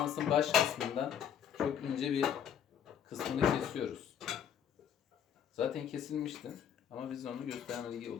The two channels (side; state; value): right; quieter; 8.8 dB